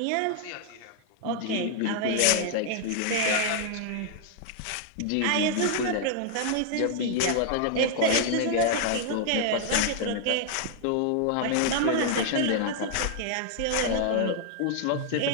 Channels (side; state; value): both; different; correlation 0.00